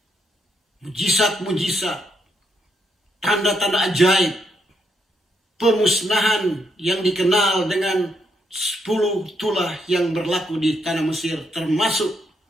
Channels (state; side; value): normal; both; correlation 0.77